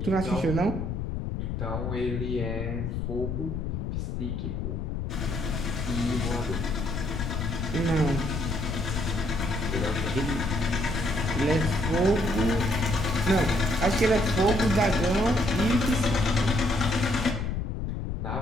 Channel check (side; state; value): left; noise; rumble, 3 dB below the sound